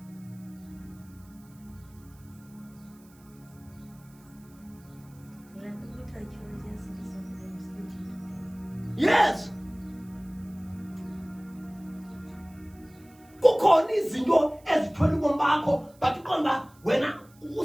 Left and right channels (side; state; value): right; noise; hiss, 28 dB below the sound